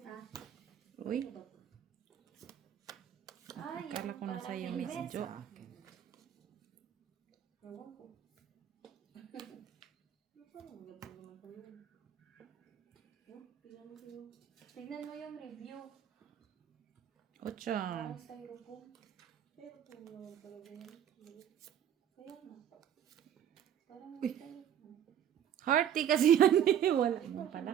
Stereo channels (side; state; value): left; quieter; 9.8 dB